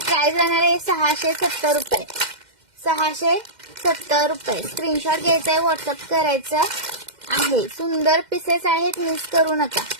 राहणार आहे 670 रुपये। 670 रुपये। स्क्रीनशॉट घ्यायचा आहे, व्हॉट्सअप करायचं आहे। सुंदर पीसेस आहेत, मिस करू नका।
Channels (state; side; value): late; left; 2.1 ms